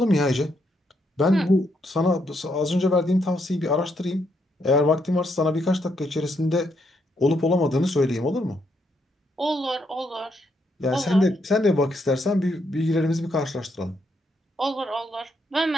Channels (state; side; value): normal; both; correlation 0.77